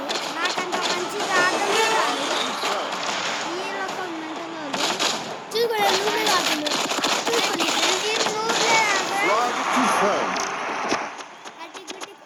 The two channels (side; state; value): both; identical; correlation 1.00